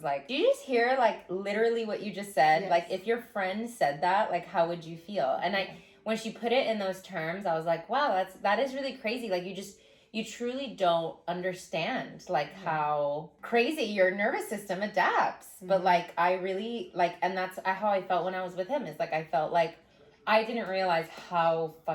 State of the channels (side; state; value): both; identical; correlation 1.00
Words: like, do you just hear like literally what you just said? Yes. Like if your friend said that, like how would you feel? And when she put it in those terms, I was like, wow, that is really crazy. Like you truly don't understand like how crazy your nervous system adapts. But like I really like, and that's how I felt when I was with him. Is like I felt like I didn't realize how